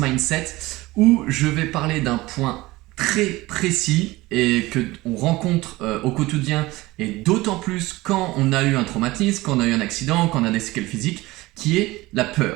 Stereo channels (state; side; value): quieter; left; 19.7 dB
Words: où je vais parler d'un point très précis et que on rencontre au quotidien et d'autant plus quand on a eu un traumatisme, quand on a eu un accident, quand on a des séquelles physiques, qui est la